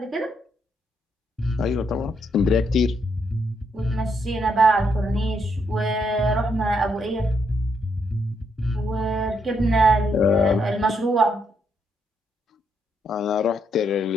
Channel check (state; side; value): normal; both; correlation 0.76